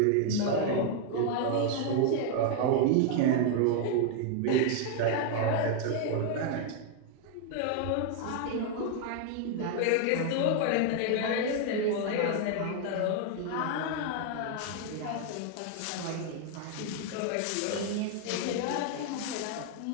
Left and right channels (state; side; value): different; both; correlation 0.00